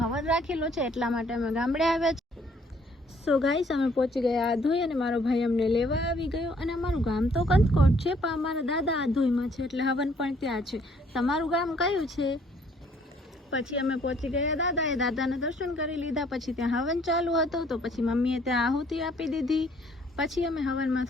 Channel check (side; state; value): both; normal; correlation 0.63